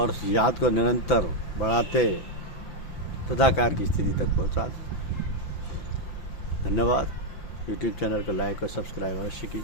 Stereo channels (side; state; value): right; late; 5.9 ms